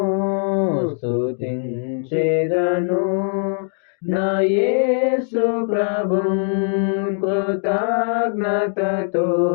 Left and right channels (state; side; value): silent; right; digital silence